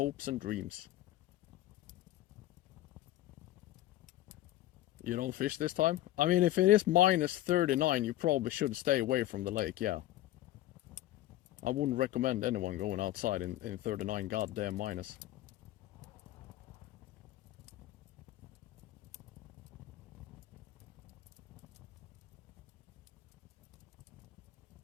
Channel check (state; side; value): quieter; right; 14.8 dB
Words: and dreams. You don't fish this time? I mean, if it is minus 39, you probably should stay away from the lake, yeah. I wouldn't recommend anyone going outside in 39 goddamn minus.